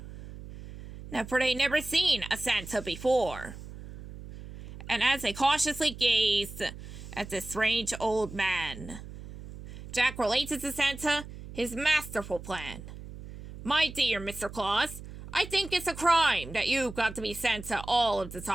Now, for they never seen a Santa before. And as they cautiously gazed at the strange old man, Jack related to Santa his masterful plan. "My dear Mr. Claus, I think it's a crime that you've got to be Santa all of the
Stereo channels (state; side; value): noise; right; hum, 13 dB below the sound